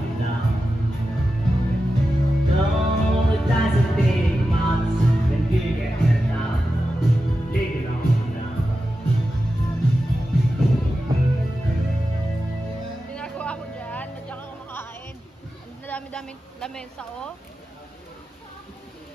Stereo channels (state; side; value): normal; both; correlation 0.91